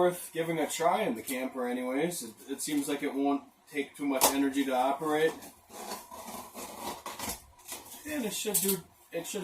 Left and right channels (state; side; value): identical; both; correlation 1.00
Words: giving a try in the camper anyways. It seems like it won't take too much energy to operate. And it should